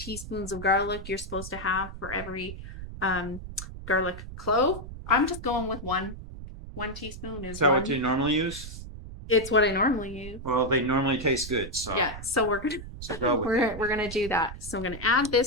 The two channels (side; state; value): right; noise; rumble, 11 dB below the sound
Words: of garlic you're supposed to have for every garlic clove. I'm just going with 1 teaspoon. Is that what you normally use? It's what I normally use. Well, they normally taste good, so yeah. So we're gonna do that. So I'm gonna add